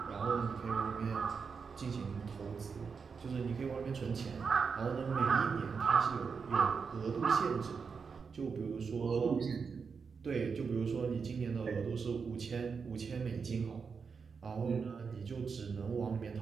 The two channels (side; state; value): left; quieter; 5.6 dB